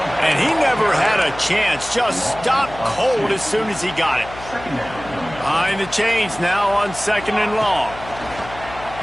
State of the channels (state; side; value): noise; left; hum, 15 dB below the sound